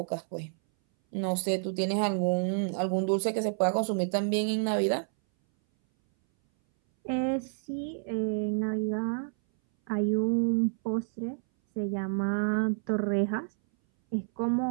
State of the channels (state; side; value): silent; left; 58 dB below the other